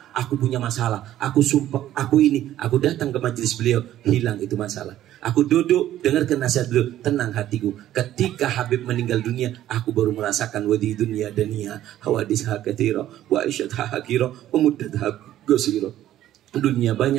Aku punya masalah, aku sumpah, aku ini. Aku datang ke majelis beliau, hilang itu masalah. Aku duduk, dengarkan nasihat beliau, tenang hatiku. Ketika Habib meninggal dunia, aku baru merasakan wadi dunia dania, hawadisha katsira, wa aisyatha hakira, wa muddatha gosira. Dunia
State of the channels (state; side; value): quieter; left; 12.8 dB